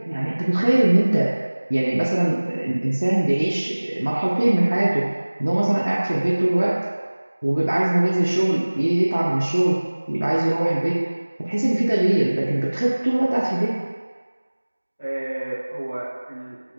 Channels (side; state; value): both; inverted; correlation -1.00